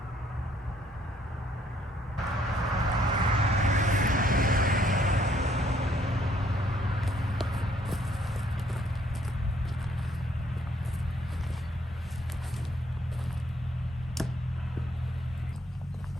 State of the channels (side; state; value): both; normal; correlation 0.66